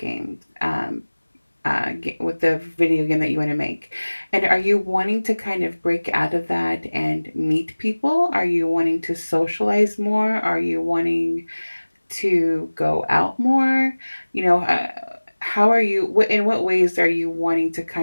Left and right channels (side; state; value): both; inverted; correlation -1.00